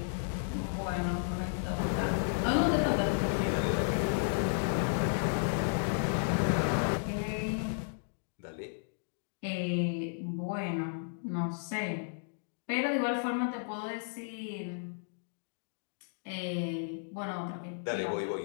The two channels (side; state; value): right; silent; digital silence